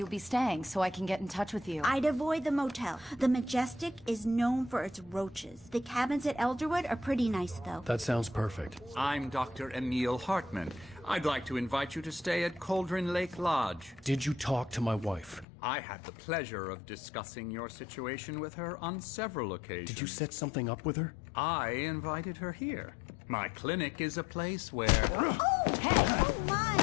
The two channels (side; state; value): right; drops out; at 15.5 s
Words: be staying so I can get in touch with you. I'd avoid the motel. The Majestic is known for its roaches. The cabins at Elderwood are pretty nice, though. That sounds perfect. I'm Dr. Emil Hartman. I'd like to invite you to stay at Cauldron Lake Lodge. Did you talk to my wife? I had the pleasure of discussing your situation with her on several occasions. Did you set something up with her? I invited her here. My clinic is a place where... Oh! Hey! Oh, my!